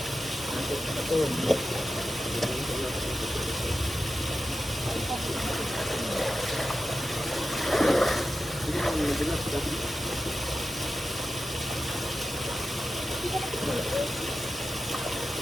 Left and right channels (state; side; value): normal; both; correlation 0.92